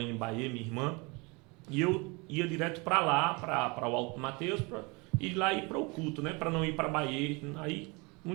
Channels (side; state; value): left; quieter; 27.8 dB